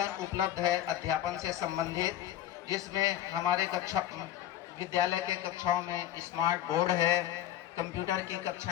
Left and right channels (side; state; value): right; quieter; 12.2 dB